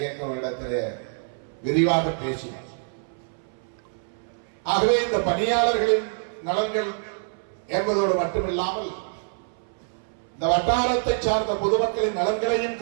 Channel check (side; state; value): left; silent; 61 dB below the other